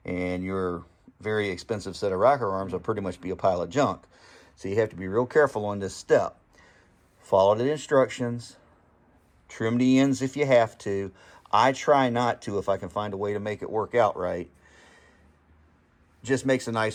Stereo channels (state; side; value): identical; both; correlation 1.00